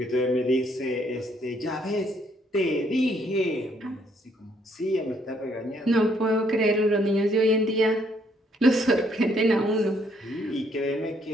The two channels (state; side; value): normal; both; correlation 0.69